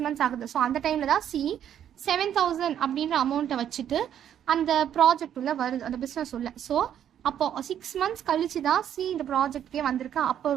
months ஆகுது. ஸோ அந்த டைமில் தான் C 7,000 அப்படின்ற அமௌண்ட்டை வச்சுட்டு அந்த ப்ராஜெக்ட் உள்ள வருது, அந்த பிஸ்னஸ் உள்ள. ஸோ அப்போ 6 months கழிச்சு தான் C இந்த ப்ராஜெக்ட்கே வந்திருக்கா. அப்போ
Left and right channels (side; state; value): left; quieter; 9.9 dB